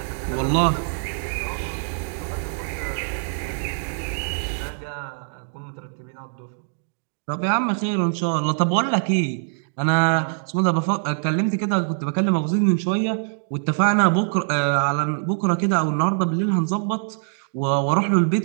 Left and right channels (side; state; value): left; silent; digital silence